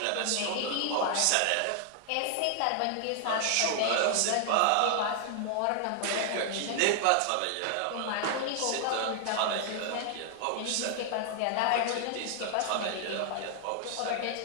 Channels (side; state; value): both; different; correlation 0.00